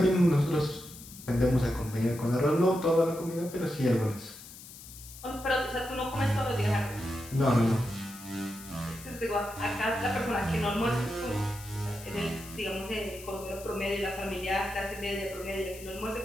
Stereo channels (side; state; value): left; noise; hiss, 16 dB below the sound